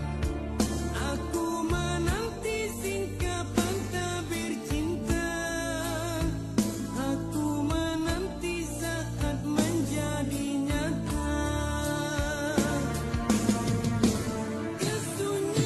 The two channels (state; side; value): identical; both; correlation 1.00